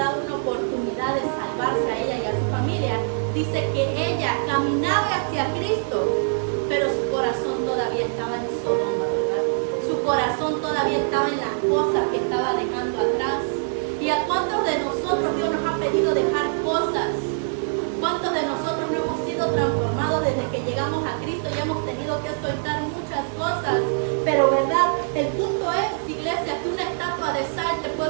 una oportunidad de salvarse a ella y a su familia. Dice que ella caminaba hacia Cristo, pero su corazón todavía estaba en Sodoma, ¿verdad? Su corazón todavía estaba en las cosas que estaba dejando atrás. ¿Y a cuántos de nosotros Dios nos ha pedido dejar cosas? ¿Cuántos de nosotros no hemos sido transformados desde que llegamos a Cristo y hemos tenido que soltar muchas cosas? Pero, ¿verdad?, el punto es, iglesia, que una estatua de sal, te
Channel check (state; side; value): silent; left; digital silence